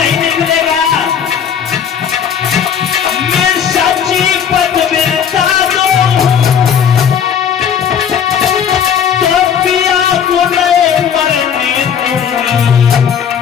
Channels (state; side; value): quieter; right; 8.0 dB